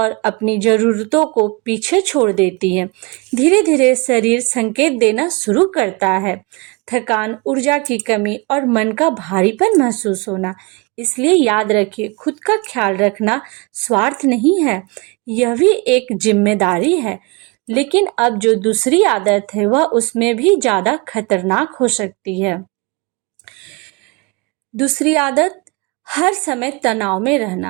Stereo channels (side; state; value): left; quieter; 28.5 dB